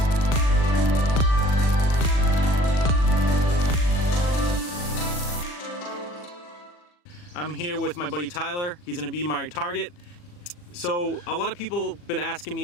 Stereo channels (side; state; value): right; late; 40 ms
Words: I'm here with my buddy Tyler. He's going to be my target. So a lot of people have been asking